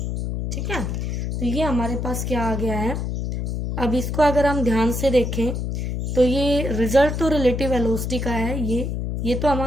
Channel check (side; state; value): left; noise; hum, 2 dB below the sound